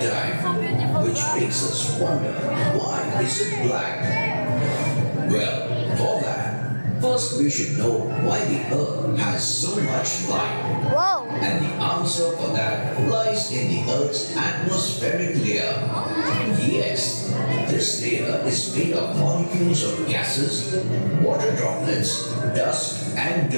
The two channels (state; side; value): inverted; both; correlation -1.00